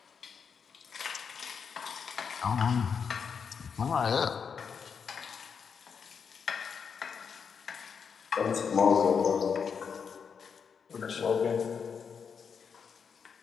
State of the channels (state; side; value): quieter; right; 6.4 dB